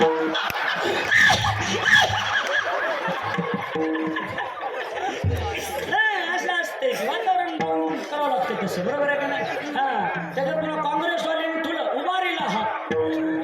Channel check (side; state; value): both; identical; correlation 1.00